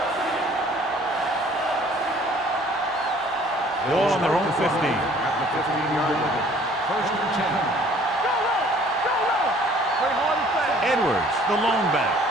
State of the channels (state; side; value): normal; both; correlation 0.55